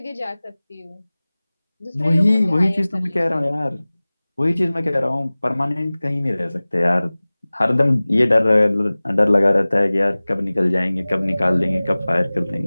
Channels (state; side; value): inverted; both; correlation -0.99